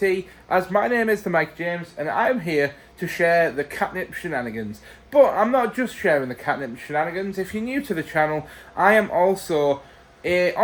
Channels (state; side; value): identical; both; correlation 1.00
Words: as my name is the Mike James, and I am here to share the Katnipp shenanigans. But I'm not just sharing the Katnipp shenanigans. If you're new to the channel, I am also